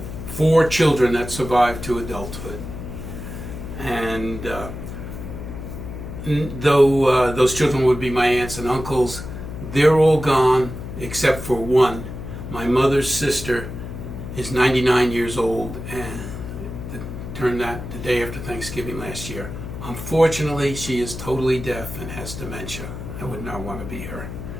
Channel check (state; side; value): noise; left; hum, 9 dB below the sound